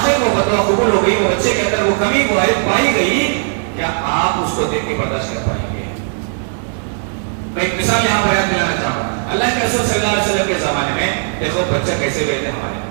وہ بد دعا قبول ہو گئی, وہ بچے کے اندر وہ کمی پائی گئی, کیا آپ اس کو دیکھ کے برداشت کر پائیں گے؟ میں ایک مثال یہاں بیان دلانا چاہوں گا. اللہ کے رسول صلی اللہ علیہ وسلم کے زمانے میں دیکھو بچہ کیسے ہوئے تھے.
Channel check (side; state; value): left; silent; digital silence